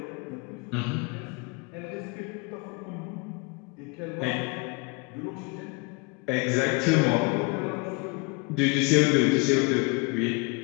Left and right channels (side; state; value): right; quieter; 28.6 dB